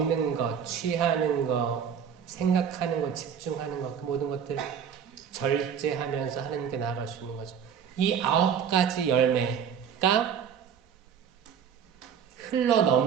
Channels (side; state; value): left; quieter; 7.8 dB